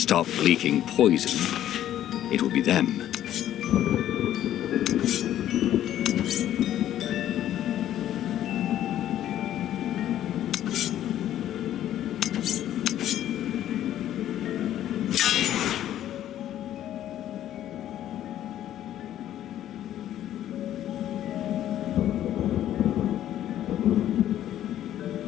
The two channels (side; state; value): right; quieter; 11.9 dB